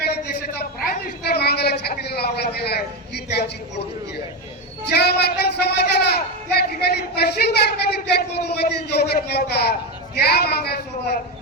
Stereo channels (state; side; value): normal; both; correlation 0.13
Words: देशाचा प्राईम मिनिस्टर मागायला छातीला लावला गेला आहे. ही त्यांची पोटदुखी आहे. ज्या मातंग समाजाला होता त्या